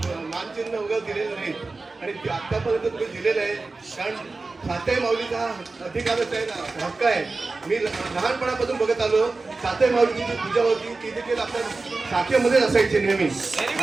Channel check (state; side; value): quieter; left; 3.7 dB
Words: मानचिन्ह वगैरे दिलेलं नाही आणि आतापर्यंत तुम्ही दिलेलं आहे. कारण सातेमौलीचा अधिकारच आहे ना, हक्क आहे. मी लहानपणापासून बघत आलो सातेमौलीची जी पूजा होती ती देखील आपल्या शाखेमध्ये असायची नेहमी